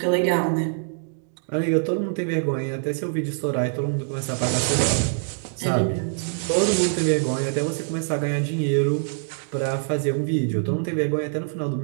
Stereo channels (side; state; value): left; silent; digital silence